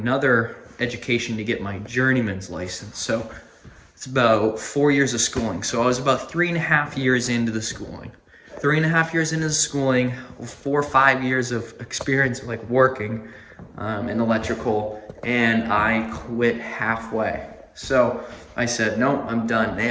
education to get my journeyman's license. So it's about 4 years of schooling. So I was about 3.5 years into the schooling. 3.5 years into the schooling, 4 or 5 years of experience like working in electrical, and I quit halfway. So I said, no, I'm done. And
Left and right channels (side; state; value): both; identical; correlation 1.00